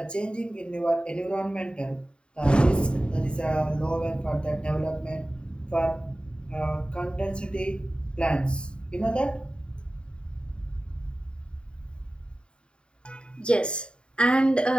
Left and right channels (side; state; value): right; late; 0.051 ms